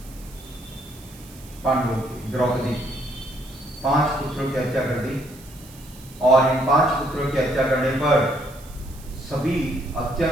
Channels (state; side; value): noise; right; hiss, 21 dB below the sound